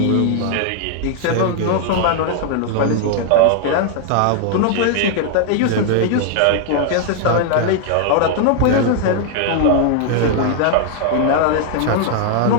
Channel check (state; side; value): different; both; correlation 0.00